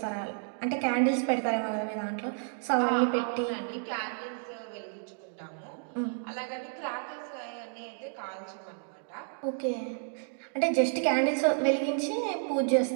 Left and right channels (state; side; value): silent; left; digital silence